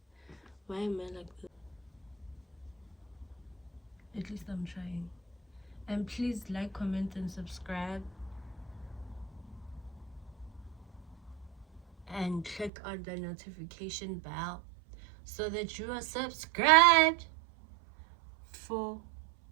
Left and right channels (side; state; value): left; drops out; at 12.7 s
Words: Why am I like this? At least I'm trying. And please like, comment, and subscribe. And click on the notification bell so that you are subscribed for